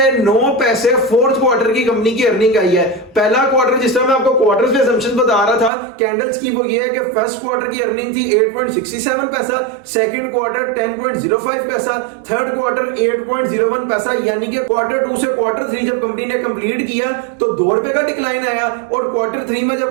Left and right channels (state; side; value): drops out; left; at 5.7 s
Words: 9 पैसे फोर्थ क्वार्टर की कंपनी की अर्निंग आई है। पहला क्वार्टर जिस तरह मैं आपको क्वार्टर्स पे असम्पशन बता रहा था कैंडल्स की वो ये है कि फर्स्ट क्वार्टर की अर्निंग थी 8.67 पैसा, सेकंड क्वार्टर 10.05 पैसा, थर्ड क्वार्टर 8.01 पैसा। यानी कि क्वार्टर 2 से क्वार्टर 3 जब कंपनी ने कंप्लीट किया तो 2 रुपए का डिक्लाइन आया और क्वार्टर 3 में